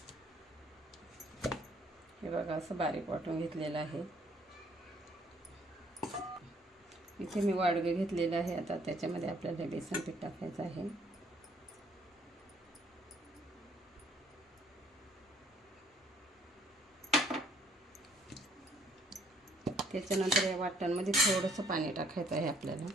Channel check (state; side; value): normal; both; correlation 0.63